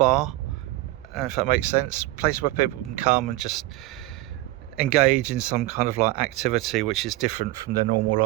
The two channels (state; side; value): quieter; left; 18.4 dB